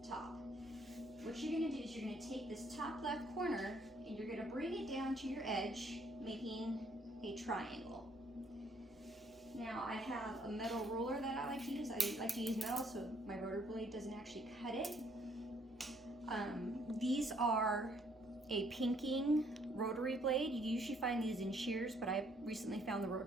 top. What you're going to do is you're going to take this top left corner and you're going to bring it down to your edge, making a triangle. Now I have a metal ruler that I like to use. I like to use metal so my rotor blade doesn't actually cut it. These are a pinking rotary blade. You usually find these in shears, but I recently found the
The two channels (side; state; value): both; normal; correlation 0.66